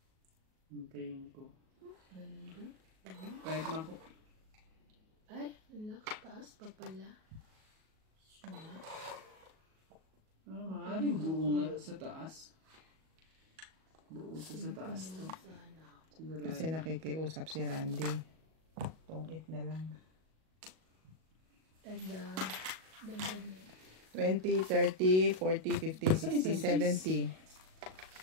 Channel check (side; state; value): left; late; 37 ms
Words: Hintayin ko. Ganun din. Kahit mako. Ay, taas pa pala. Maaaring buo nga sa taas. Buo to sa taas to. Siguro. Kasi nakikiusap si Randy. Tungit na lang. Dagdag niya. 20, 30, 40, 50, 60, 70.